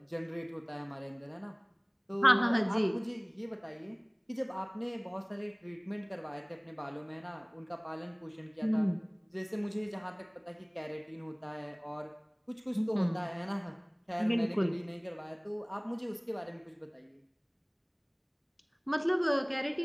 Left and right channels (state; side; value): identical; both; correlation 1.00